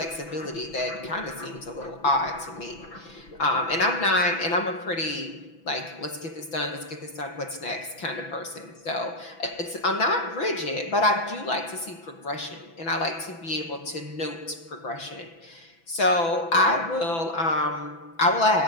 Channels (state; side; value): late; right; 6.0 ms